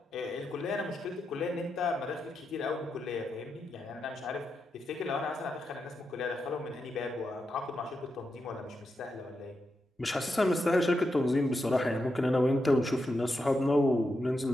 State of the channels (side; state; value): both; normal; correlation 0.86